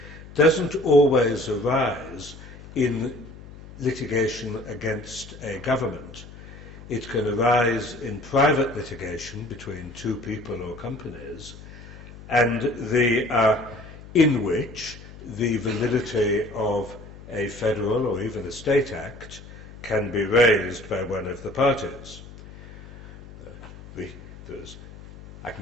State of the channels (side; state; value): left; noise; hum, 17 dB below the sound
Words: doesn't always arise in litigation against a government. It can arise in private litigation between two people or companies, and in which the validity of a federal or even a state act can be raised by one of the parties. I